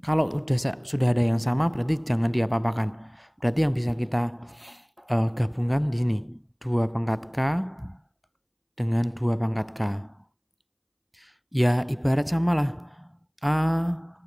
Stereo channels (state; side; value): identical; both; correlation 1.00